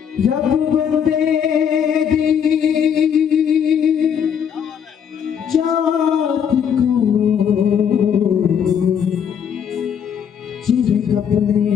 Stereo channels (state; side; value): quieter; right; 8.0 dB